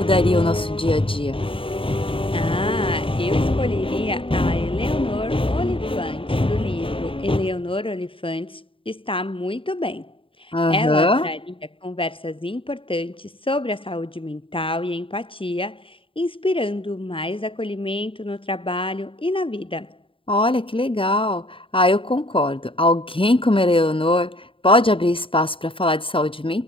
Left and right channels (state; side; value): late; right; 0.26 ms